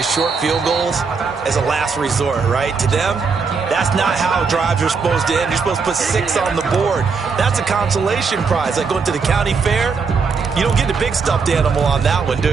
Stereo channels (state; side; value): quieter; left; 5.1 dB